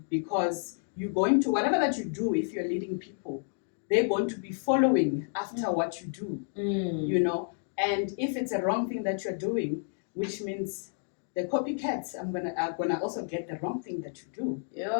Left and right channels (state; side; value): silent; right; digital silence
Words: Because you're going to, whatever that you do, if you're leading people, they're going to be following after what you do, and if it's a wrong thing that you're doing, which means the copycats are gonna also get the wrong thing that you do